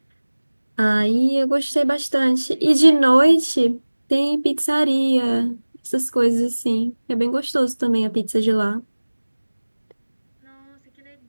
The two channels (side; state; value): both; inverted; correlation -1.00